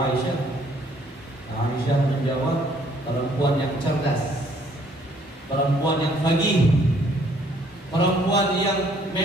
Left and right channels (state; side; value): normal; both; correlation 0.63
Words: Aisyah menjawab, perempuan yang cerdas, perempuan yang faqih, perempuan yang